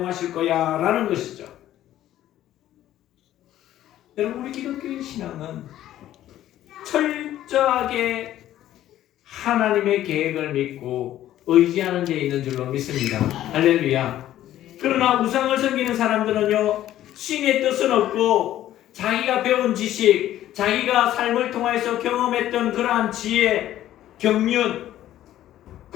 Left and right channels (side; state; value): right; quieter; 12.9 dB